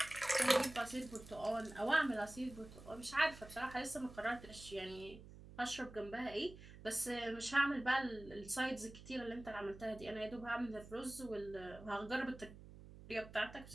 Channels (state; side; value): noise; right; hum, 16 dB below the sound